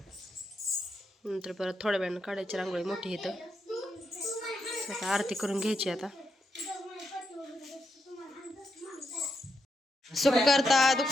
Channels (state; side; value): normal; both; correlation 0.83